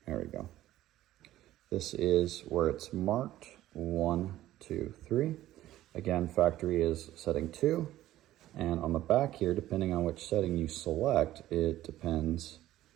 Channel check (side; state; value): left; quieter; 14.3 dB